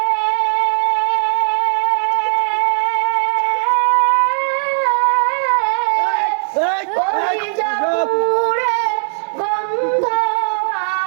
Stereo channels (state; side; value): silent; left; digital silence